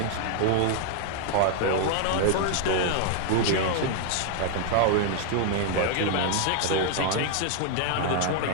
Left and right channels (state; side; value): different; both; correlation 0.00